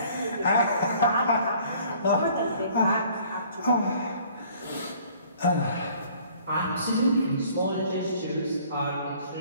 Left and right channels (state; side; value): inverted; both; correlation -0.55